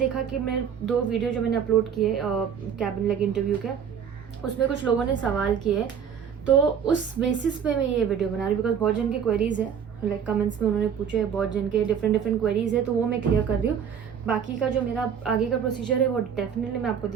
कि मैं 2 वीडियो जो मैंने अपलोड किए कैबिन लगे इंटरव्यू के, उसमें कुछ लोगों ने सवाल किए, तो उस बेसिस पे मैं ये वीडियो बना रही हूँ। बिकॉज बहुत जन के क्वेरीज है, लाइक कमेंट्स में उन्होंने पूछे, बहुत जन के डिफरेंट क्वेरीज है, तो वो मैं क्लियर कर रही हूँ। बाकी का जो मेरा आगे का प्रोसीजर है वो डेफिनेटली मैं आपको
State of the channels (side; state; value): left; quieter; 7.7 dB